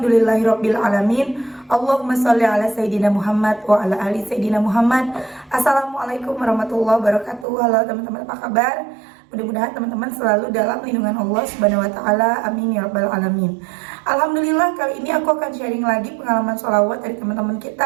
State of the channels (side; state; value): left; drops out; at 7.5 s